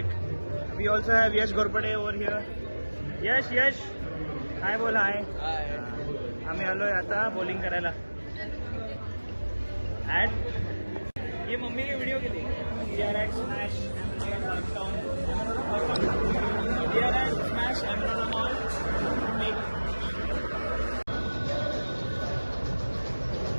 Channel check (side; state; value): both; inverted; correlation -1.00